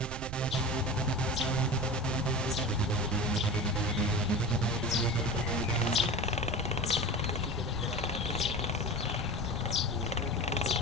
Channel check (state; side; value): noise; right; rumble, 8 dB below the sound